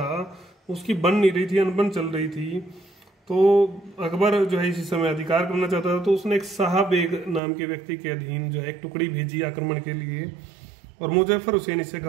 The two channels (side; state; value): left; drops out; at 7.4 s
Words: उसकी बन नहीं रही थी, अनबन चल रही थी। तो अकबर जो है इसी समय अधिकार करना चाहता था। तो उसने एक शाह बेग नाम के व्यक्ति के अधीन जो है एक टुकड़ी भेजी आक्रमण के लिए, और मुजफ्फर हुसैन इससे